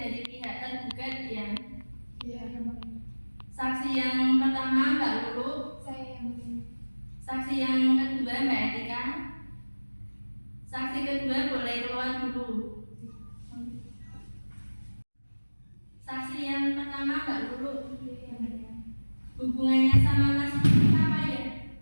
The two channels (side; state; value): both; inverted; correlation -1.00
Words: pihak tergugat yang Iya, saksi yang pertama Mbak Lulu, saya yang begini. saksi yang kedua Mbak Etika, saksi kedua boleh keluar dulu. Saksi yang pertama Mbak Lulu, hubungannya sama Mas Nuki apa ya?